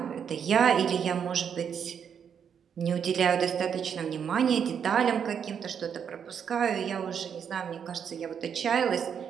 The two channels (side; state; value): left; quieter; 7.7 dB